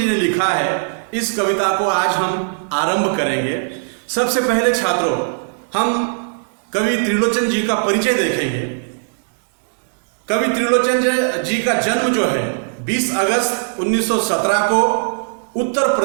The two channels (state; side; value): silent; left; digital silence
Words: ने लिखा है, इस कविता को आज हम आरंभ करेंगे। सबसे पहले छात्रों, हम कवि त्रिलोचन जी का परिचय देखेंगे। कवि त्रिलोचन जी का जन्म जो है 20 अगस्त 1917 को उत्तर